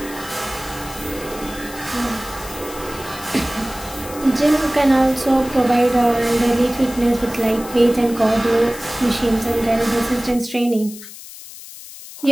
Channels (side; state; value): left; noise; hiss, 15 dB below the sound